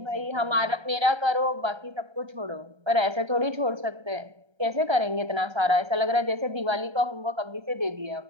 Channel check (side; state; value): left; late; 1.3 ms